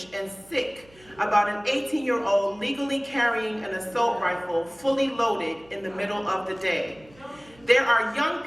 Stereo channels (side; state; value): right; noise; hum, 27 dB below the sound